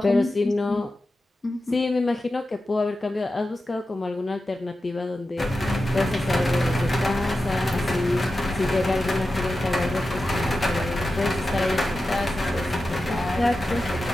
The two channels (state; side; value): normal; both; correlation 0.92